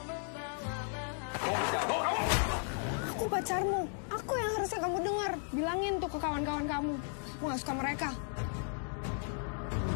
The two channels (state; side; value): silent; right; 54 dB below the other